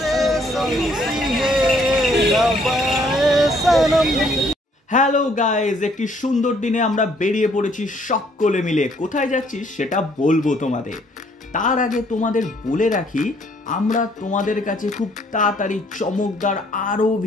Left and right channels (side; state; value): both; normal; correlation 0.65